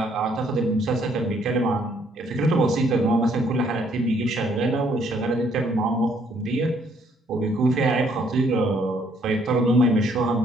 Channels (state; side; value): normal; both; correlation 0.66